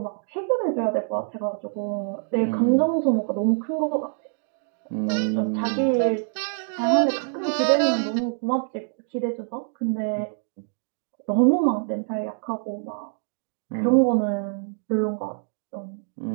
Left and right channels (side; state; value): left; silent; digital silence